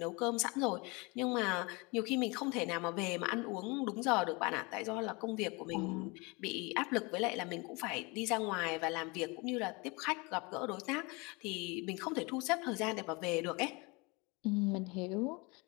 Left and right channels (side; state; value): right; quieter; 27.3 dB